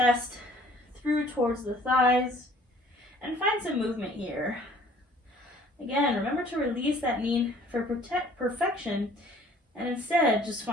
through towards the thighs, and find some movement here. Again, remember to release that need for perfection, and instead just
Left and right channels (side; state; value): both; normal; correlation 0.54